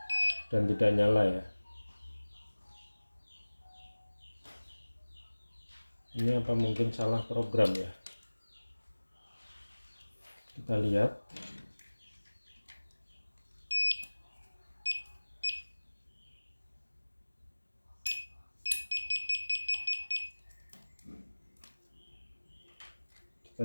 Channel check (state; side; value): inverted; both; correlation -1.00